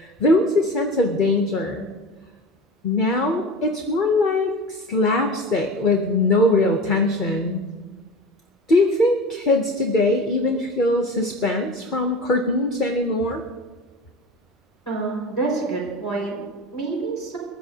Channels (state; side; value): normal; both; correlation 0.33